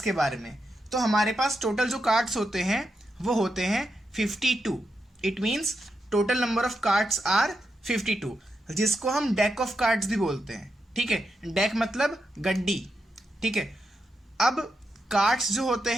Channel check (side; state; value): both; normal; correlation 0.85